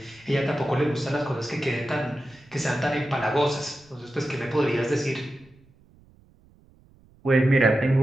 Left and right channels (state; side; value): noise; right; rumble, 29 dB below the sound